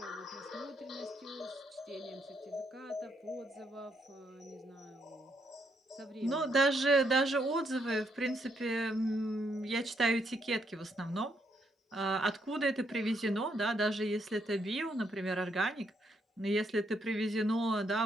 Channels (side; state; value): both; normal; correlation 0.75